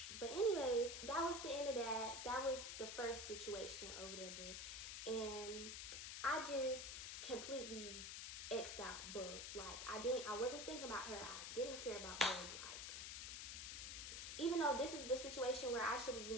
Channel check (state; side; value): noise; left; hiss, 5 dB below the sound